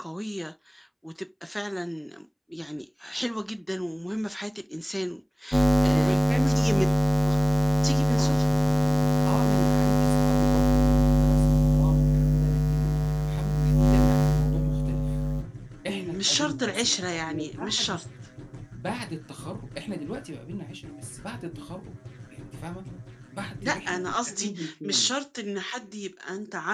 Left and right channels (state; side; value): identical; both; correlation 1.00